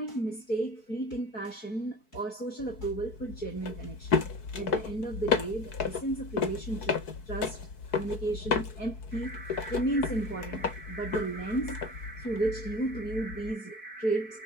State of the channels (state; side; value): late; right; 4.6 ms